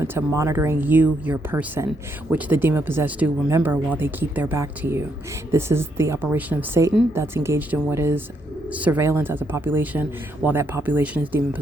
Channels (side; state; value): both; normal; correlation 0.76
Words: to monitoring you, your person, which the demon-possessed do, remember, while they keep their back to you. This is the operation of Satan that's engaged in what is surveillance as a population while that population is